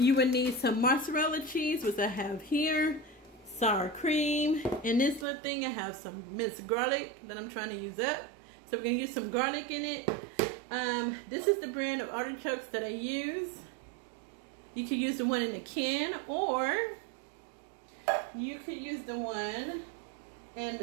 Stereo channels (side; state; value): left; drops out; at 5.2 s